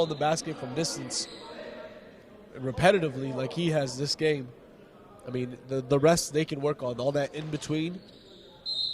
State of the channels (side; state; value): both; identical; correlation 1.00